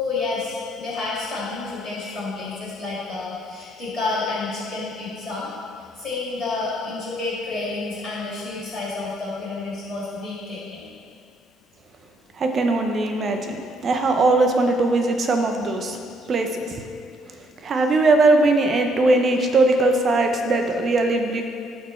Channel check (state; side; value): normal; both; correlation 0.70